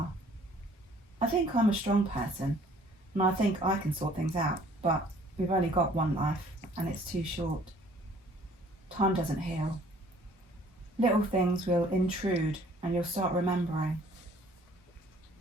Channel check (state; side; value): normal; both; correlation 0.57